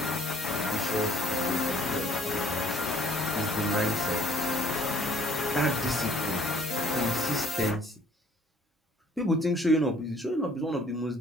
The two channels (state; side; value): normal; both; correlation 0.57